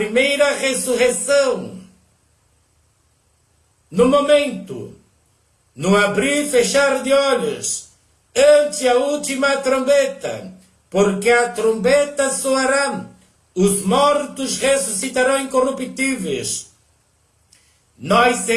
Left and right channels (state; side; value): identical; both; correlation 1.00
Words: ressurreição, no momento, no abrir e fechar de olhos, ante a última trombeta, porque a trombeta soará, os mortos ressuscitarão incorruptíveis. Nós